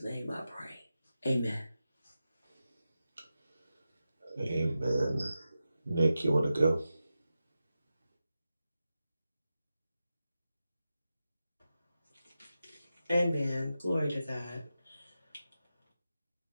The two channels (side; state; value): both; inverted; correlation -0.91